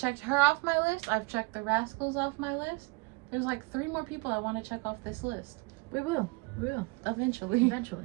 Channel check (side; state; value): left; quieter; 27.6 dB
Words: her off my list. I've checked the Rascals off my list. There's like 3 more people I want to check off this list. We will. We will. Eventually.